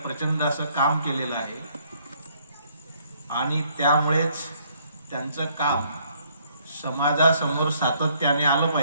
असं काम केलेलं आहे आणि त्यामुळेच त्यांचं काम समाजासमोर सातत्याने आलं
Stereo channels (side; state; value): both; inverted; correlation -0.66